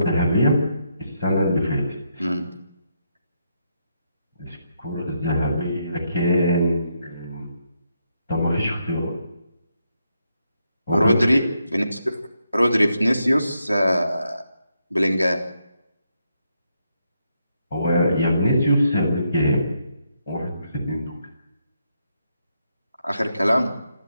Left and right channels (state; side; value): inverted; both; correlation -0.80